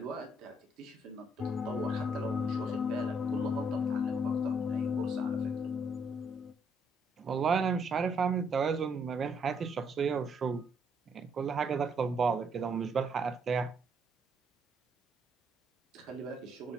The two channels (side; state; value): both; normal; correlation 0.71